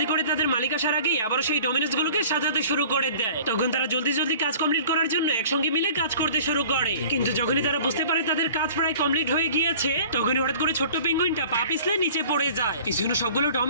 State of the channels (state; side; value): inverted; both; correlation -0.46